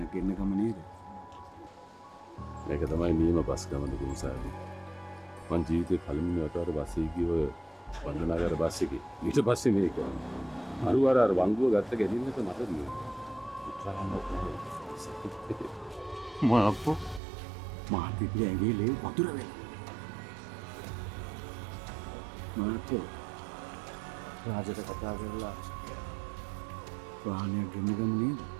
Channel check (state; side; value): drops out; left; at 17.2 s